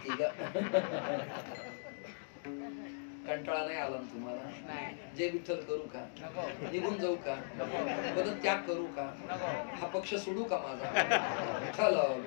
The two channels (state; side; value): silent; right; digital silence